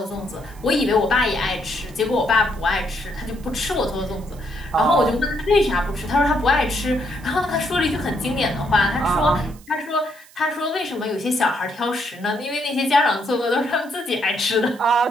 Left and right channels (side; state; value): right; noise; hiss, 25 dB below the sound